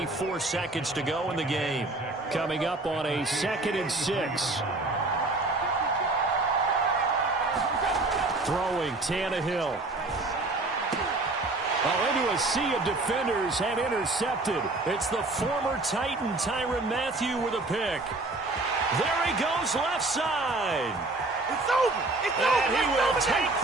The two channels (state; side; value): quieter; left; 3.0 dB